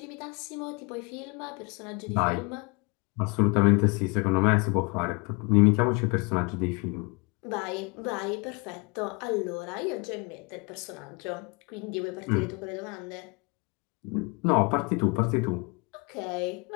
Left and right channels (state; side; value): quieter; right; 29.2 dB